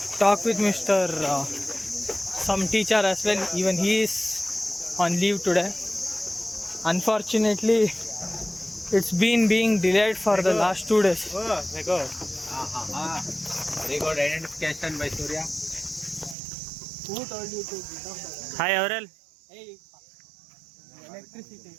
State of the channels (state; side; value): drops out; left; at 16.4 s